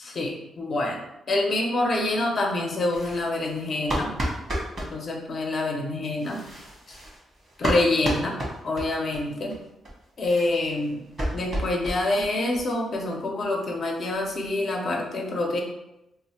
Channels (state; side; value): normal; both; correlation 0.81